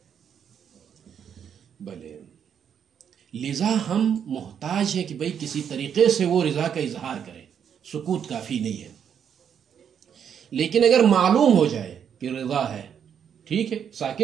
بھلے لذا ہم محتاج ہیں کہ بھئی کسی طریقے سے وہ رضا کا اظہار کرے. سکوت کافی نہیں ہے. لیکن اگر معلوم ہو جائے کہ رضا ہے، ٹھیک ہے،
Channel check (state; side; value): quieter; left; 8.1 dB